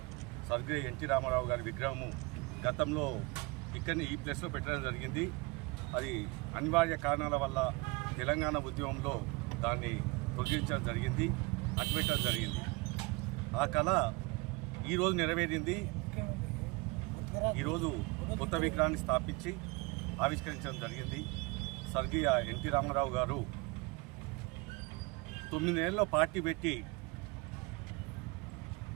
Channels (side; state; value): left; quieter; 25.7 dB